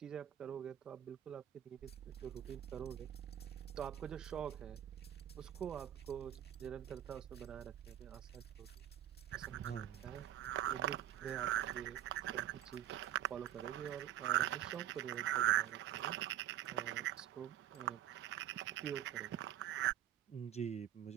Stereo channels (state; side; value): quieter; left; 11.5 dB